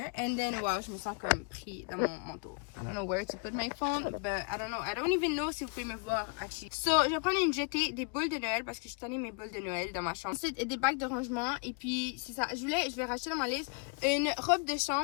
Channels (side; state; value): right; quieter; 35.0 dB